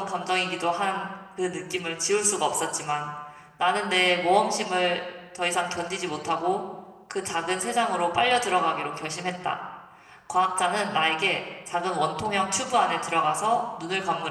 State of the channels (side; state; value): both; identical; correlation 1.00